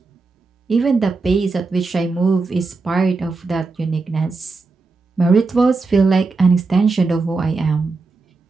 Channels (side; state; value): left; quieter; 3.9 dB